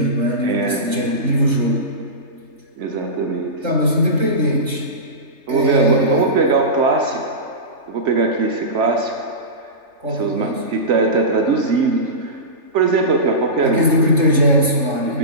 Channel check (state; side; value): late; left; 3.3 ms